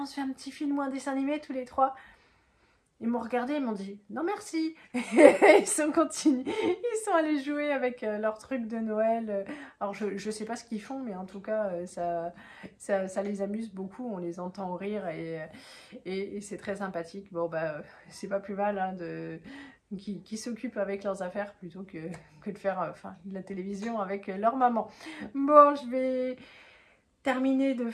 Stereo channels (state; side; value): identical; both; correlation 1.00